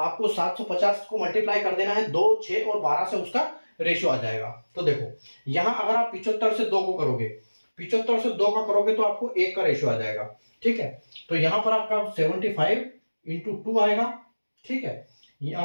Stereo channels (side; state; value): both; inverted; correlation -1.00